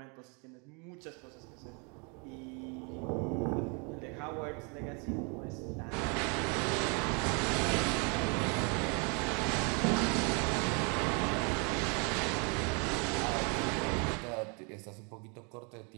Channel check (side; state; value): left; quieter; 34.1 dB